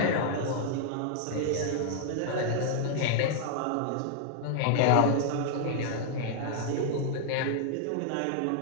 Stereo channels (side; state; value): both; different; correlation 0.00